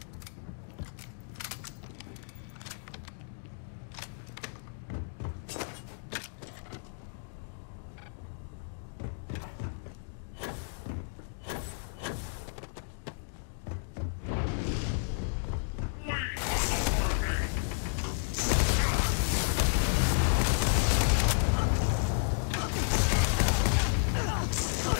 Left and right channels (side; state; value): right; silent; digital silence